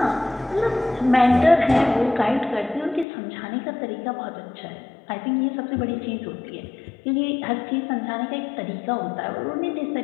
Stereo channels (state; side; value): drops out; right; at 3.1 s